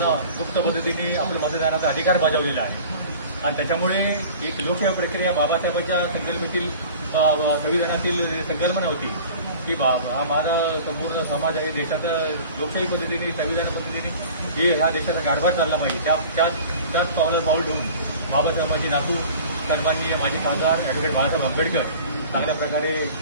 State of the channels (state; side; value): inverted; both; correlation -0.42